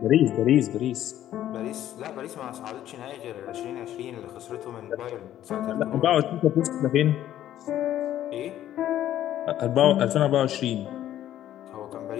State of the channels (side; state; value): right; quieter; 12.2 dB